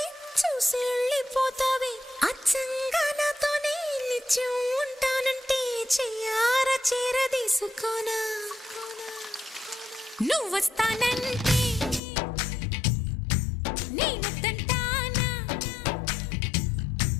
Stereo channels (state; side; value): drops out; right; at 12.0 s